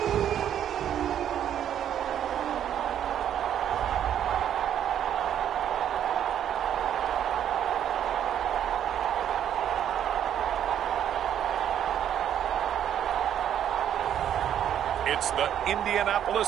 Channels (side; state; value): left; quieter; 10.0 dB